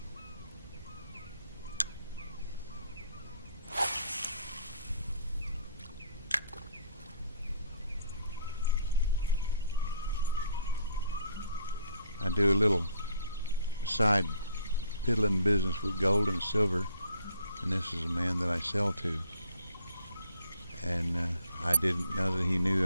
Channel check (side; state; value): both; inverted; correlation -0.62